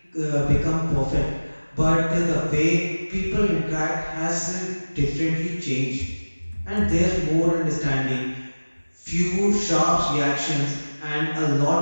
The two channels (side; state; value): both; inverted; correlation -1.00